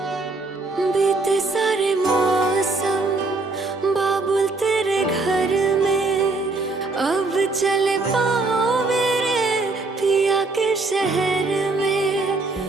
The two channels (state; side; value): quieter; left; 3.5 dB